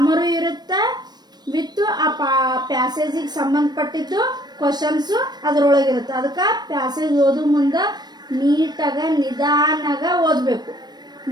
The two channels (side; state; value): left; late; 0.20 ms